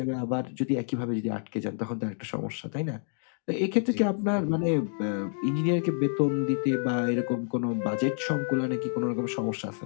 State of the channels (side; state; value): right; silent; 59 dB below the other